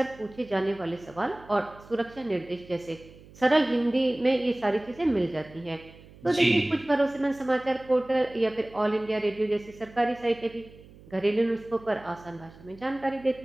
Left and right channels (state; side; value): noise; right; hum, 22 dB below the sound